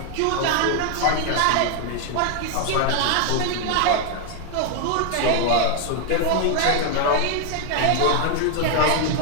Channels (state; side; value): different; both; correlation 0.01